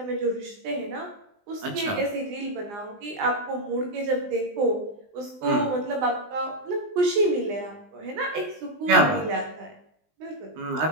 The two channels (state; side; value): late; left; 20 ms